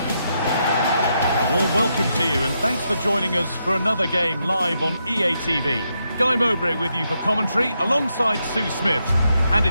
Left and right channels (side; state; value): both; inverted; correlation -0.81